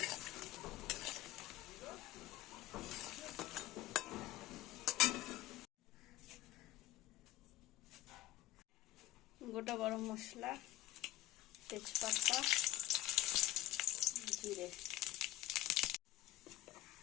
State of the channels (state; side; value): quieter; right; 15.0 dB